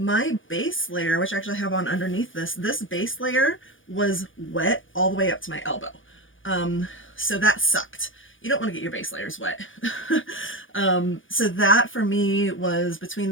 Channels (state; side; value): late; right; 0.57 ms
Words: base layer, which I actually have on underneath this base layer was wet all the way up to my elbow. So that sucked. You don't want to get your base layers wet. So that for me was between